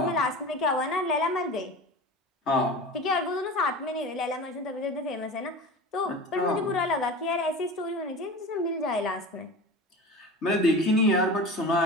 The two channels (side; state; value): both; normal; correlation 0.33